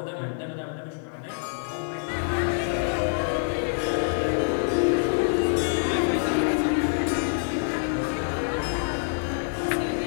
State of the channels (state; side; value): silent; right; digital silence